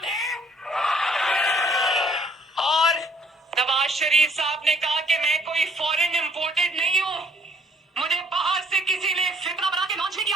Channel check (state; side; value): normal; both; correlation 0.62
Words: और नवाज शरीफ साहब ने कहा कि मैं कोई फॉरेन इंपोर्टेड नहीं हूँ, मुझे बाहर से किसी ने फितरा बना के लॉन्च नहीं